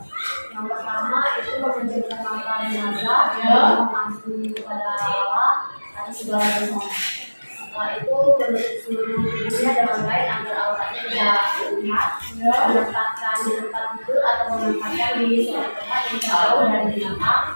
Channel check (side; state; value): both; inverted; correlation -1.00